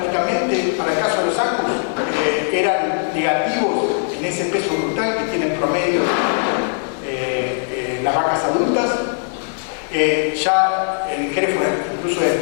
para el caso de los Angus, eran negativos en ese peso brutal que tienen promedio las vacas adultas. Ya en Hereford incluso el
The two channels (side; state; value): right; silent; digital silence